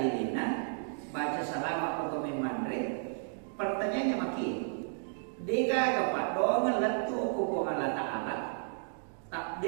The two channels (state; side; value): silent; left; digital silence